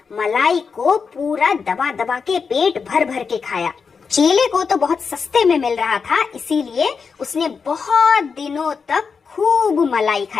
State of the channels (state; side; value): quieter; right; 5.5 dB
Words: मलाई को पूरा दबा दबा के पेट भर भर के खाया। चेले को तो बहुत सस्ते में मिल रहा था, इसीलिए उसने बहुत दिनों तक खूब मलाई